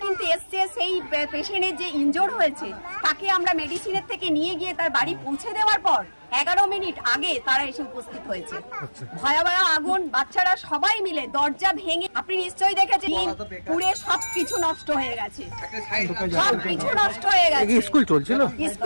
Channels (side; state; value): both; inverted; correlation -1.00